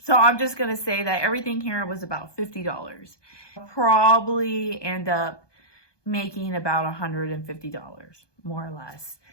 So I'm just going to say that everything here was about $50. I'll probably end up making about $150, more or less.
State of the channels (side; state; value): right; late; 1.2 ms